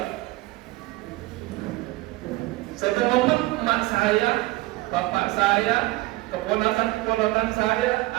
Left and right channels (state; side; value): quieter; left; 19.9 dB